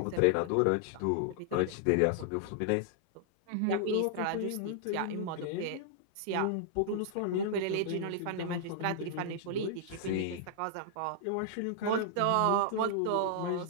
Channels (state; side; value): different; both; correlation -0.01